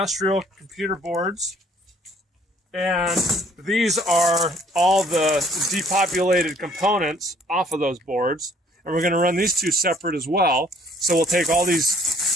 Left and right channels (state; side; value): normal; both; correlation 0.59